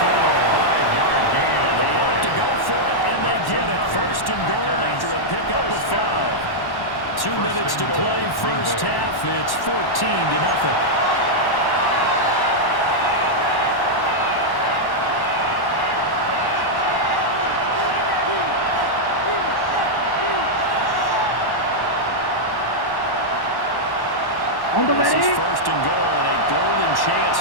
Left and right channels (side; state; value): right; late; 1.1 ms